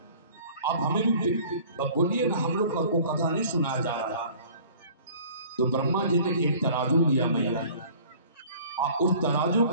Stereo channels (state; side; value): inverted; both; correlation -0.49